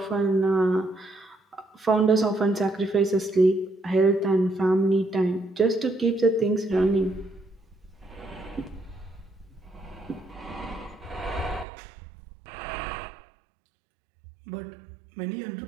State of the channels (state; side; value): drops out; left; at 11.7 s